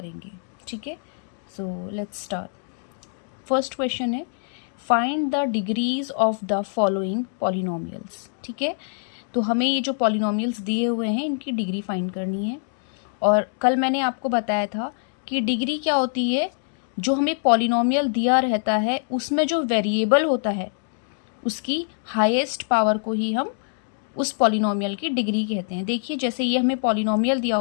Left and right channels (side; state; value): right; silent; digital silence